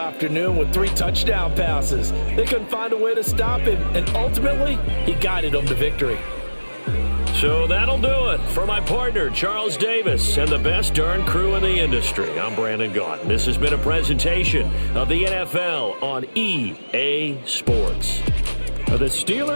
with 3 touchdown passes. They couldn't find a way to stop him, and ultimately, he guided them to victory. So that'll do it for my partner, Charles Davis, and the best darn crew in the industry. I'm Brandon Gaughan. This has been a presentation of the NFL on EA Sports. The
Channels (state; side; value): inverted; both; correlation -1.00